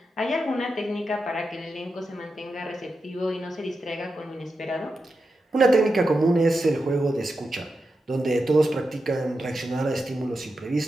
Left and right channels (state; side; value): normal; both; correlation 0.89